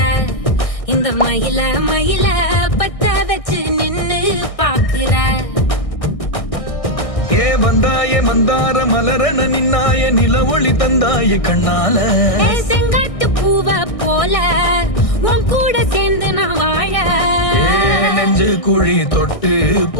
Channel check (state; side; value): late; right; 1.6 ms